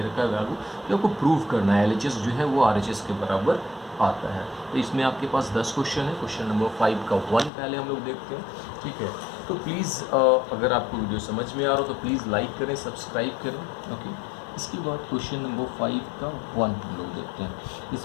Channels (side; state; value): right; drops out; at 7.5 s